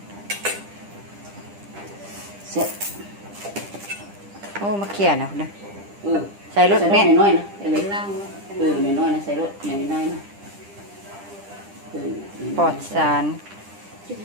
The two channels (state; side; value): late; left; 10 ms